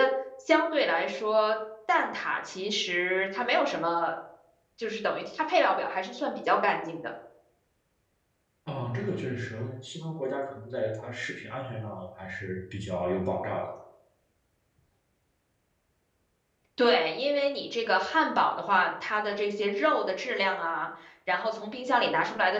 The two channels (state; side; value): identical; both; correlation 1.00